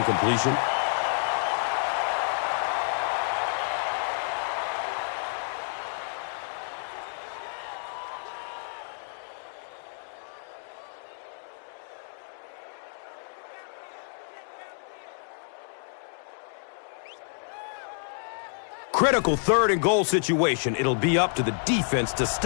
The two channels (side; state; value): right; silent; 58 dB below the other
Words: Critical third and goal situation. It'll be up to the defense to